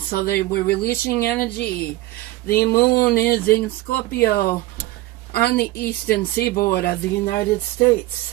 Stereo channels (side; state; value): left; quieter; 17.7 dB